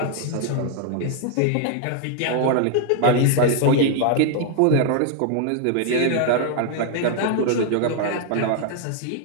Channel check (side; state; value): both; different; correlation 0.00